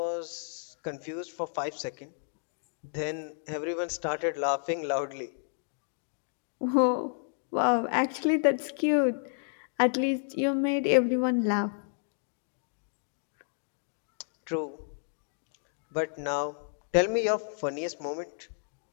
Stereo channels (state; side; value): silent; right; digital silence